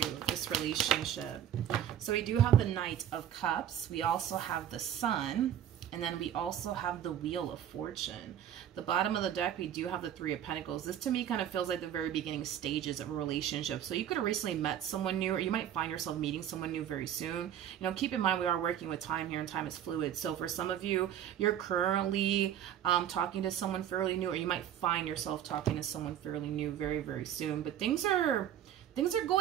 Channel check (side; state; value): left; quieter; 10.4 dB